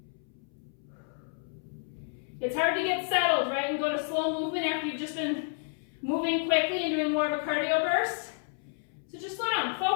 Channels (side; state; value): right; silent; 57 dB below the other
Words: It's hard to get settled, right, and go to slow movement after you've just been moving quickly and doing more of a cardio burst. So just slow down,